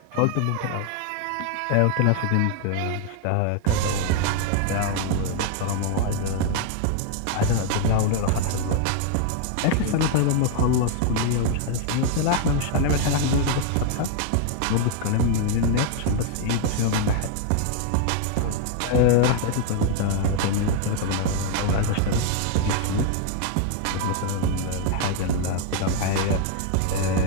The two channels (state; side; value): different; both; correlation 0.00